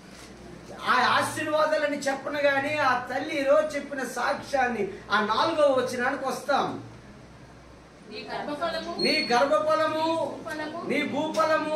ఆ ఆశీర్వాదాలని చెప్పను గాని ఆ తల్లి ఈరోజు చెప్పిన సాక్ష్యాన్ని ఆ 4వ వచనానికి వస్తాం. నీ గర్భఫలము, నీ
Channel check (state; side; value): identical; both; correlation 1.00